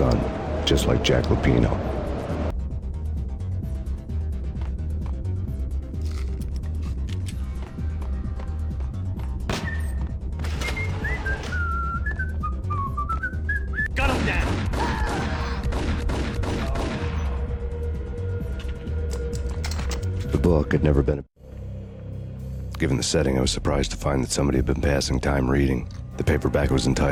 just like Jack Lupino. Gun him down! The book had never been... Given the setting, I was surprised to find that somebody had been passing time reading. The paperback was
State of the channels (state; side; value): identical; both; correlation 1.00